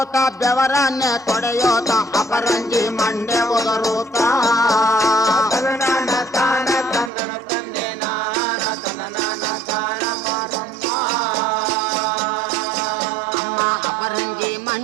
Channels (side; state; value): left; drops out; at 7.1 s